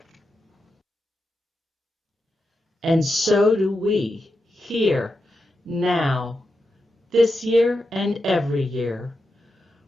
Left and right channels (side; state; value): both; normal; correlation 0.88